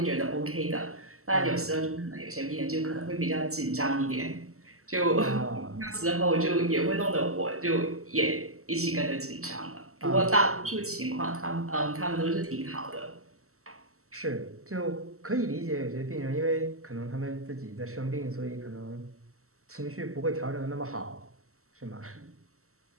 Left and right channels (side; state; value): left; late; 0.63 ms